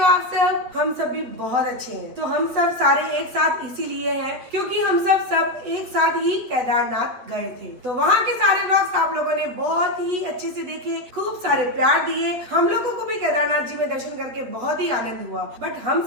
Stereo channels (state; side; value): late; left; 8.5 ms